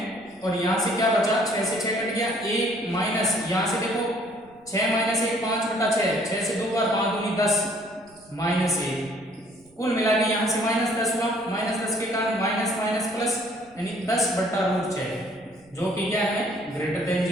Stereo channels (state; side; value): noise; right; rumble, 29 dB below the sound